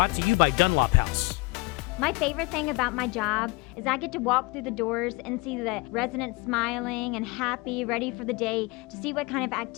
to you by Dunlop House. My favorite thing about my job is I get to walk through the doors and see the residents smiling and happy, ready for the day to see what kind of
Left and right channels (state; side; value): quieter; right; 25.2 dB